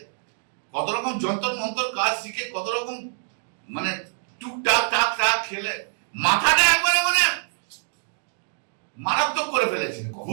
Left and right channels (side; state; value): left; silent; digital silence